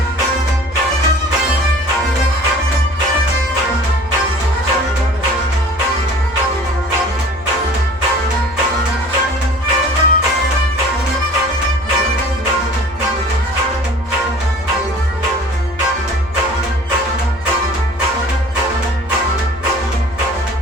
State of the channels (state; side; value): noise; left; rumble, 21 dB below the sound